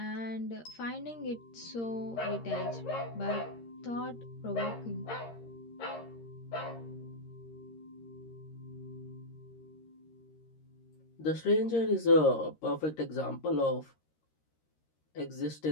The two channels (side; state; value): right; late; 13 ms